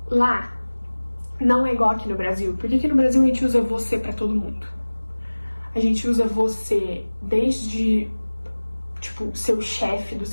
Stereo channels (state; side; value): inverted; both; correlation -1.00